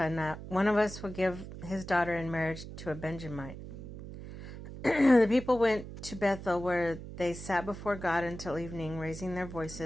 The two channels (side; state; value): right; noise; hum, 12 dB below the sound